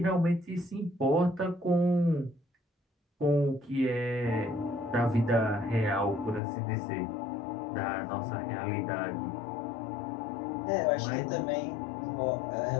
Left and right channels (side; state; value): right; drops out; at 6.4 s